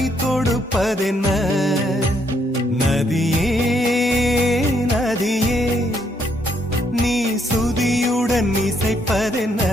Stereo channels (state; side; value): normal; both; correlation 0.73